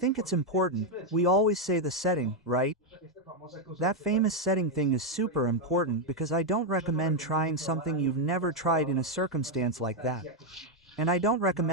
it's important. We always say the setting, right? That famous setting thing is super important because I don't recommend trying something you've never tried in a circumstance like that. And I don't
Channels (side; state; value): both; normal; correlation 0.02